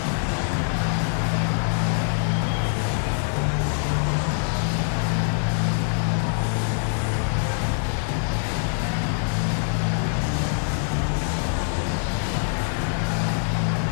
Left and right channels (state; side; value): silent; right; 62 dB below the other